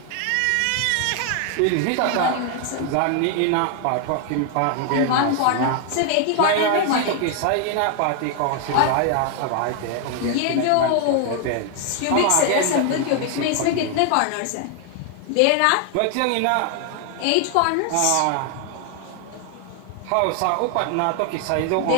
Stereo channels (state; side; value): different; both; correlation 0.00